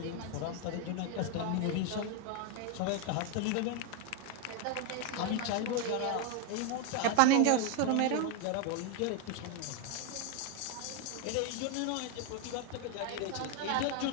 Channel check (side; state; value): both; different; correlation 0.01